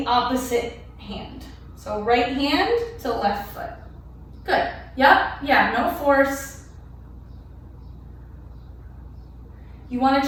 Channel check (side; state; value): both; identical; correlation 1.00